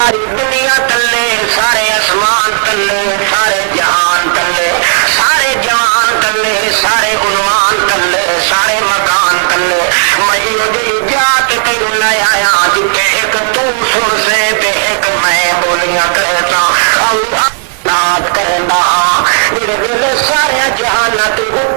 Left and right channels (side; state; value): left; silent; digital silence